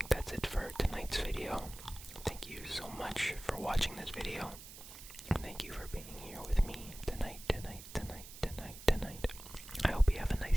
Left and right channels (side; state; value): right; noise; hiss, 14 dB below the sound